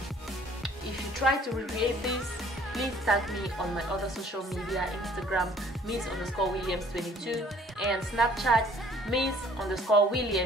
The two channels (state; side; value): normal; both; correlation 0.56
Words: If you try to recreate this, please tag me on my other social media: Instagram miss_williams22 and Snapchat